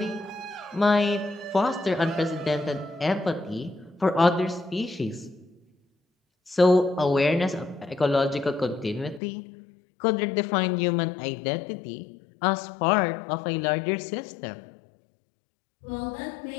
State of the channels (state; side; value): drops out; right; at 9.2 s